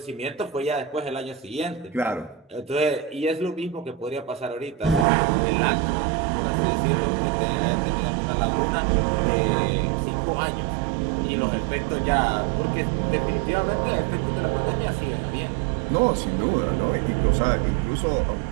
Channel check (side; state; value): left; drops out; at 5.1 s